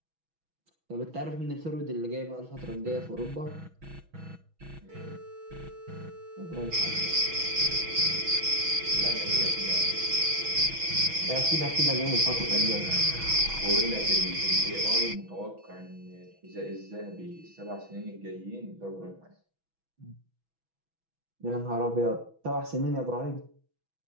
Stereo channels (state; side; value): late; left; 6.2 ms